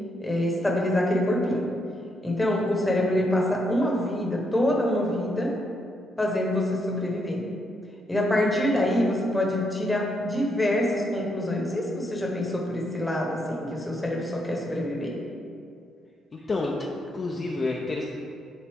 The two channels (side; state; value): both; normal; correlation 0.78